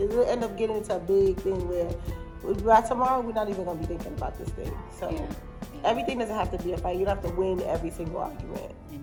end up getting into a big thing where by tomorrow we're not even gonna be thinking about this thing. So everything doesn't have to be a fight. You don't have to win every single argument.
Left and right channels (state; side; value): identical; both; correlation 1.00